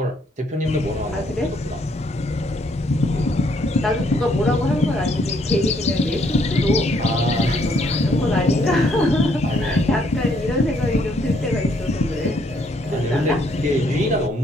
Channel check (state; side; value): normal; both; correlation 0.69